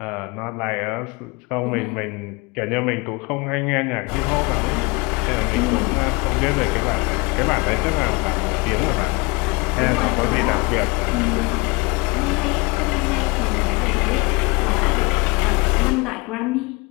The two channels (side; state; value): right; quieter; 26.8 dB